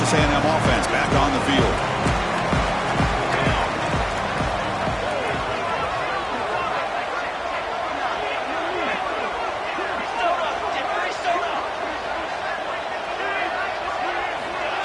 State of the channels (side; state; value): both; identical; correlation 1.00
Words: A&M offense back on the field.